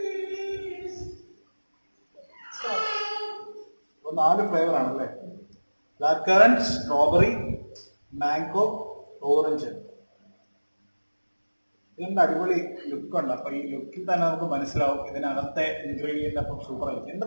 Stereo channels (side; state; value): both; inverted; correlation -1.00